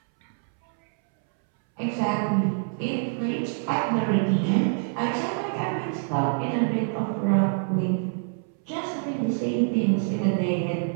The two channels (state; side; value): silent; left; 61 dB below the other